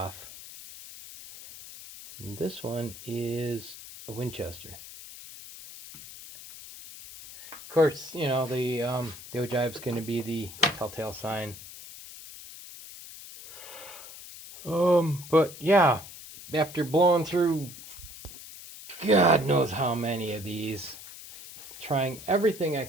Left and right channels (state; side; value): noise; left; hiss, 15 dB below the sound